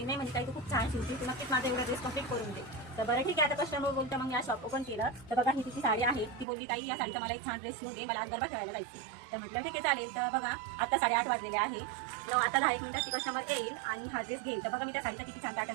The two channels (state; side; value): drops out; left; at 6.5 s